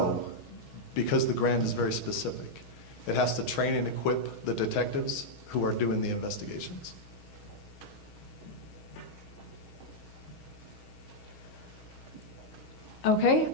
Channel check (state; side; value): late; right; 6.3 ms